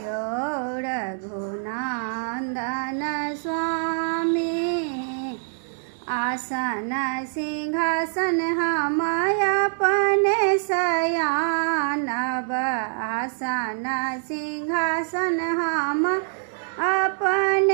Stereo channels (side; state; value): left; silent; digital silence